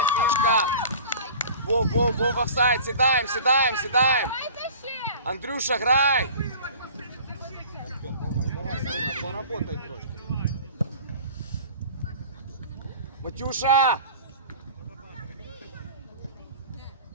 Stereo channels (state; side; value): inverted; both; correlation -0.42